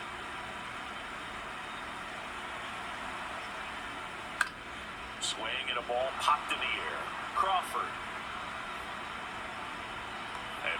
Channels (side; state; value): both; identical; correlation 1.00